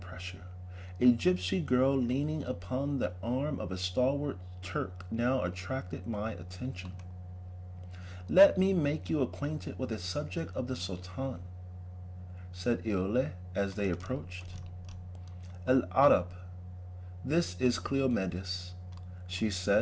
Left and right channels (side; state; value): both; identical; correlation 1.00